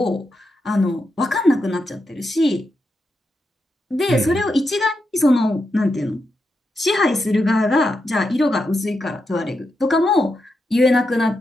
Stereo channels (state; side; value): normal; both; correlation 0.85